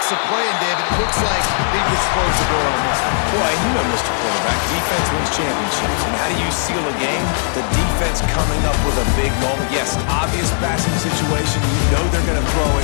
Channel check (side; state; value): right; silent; digital silence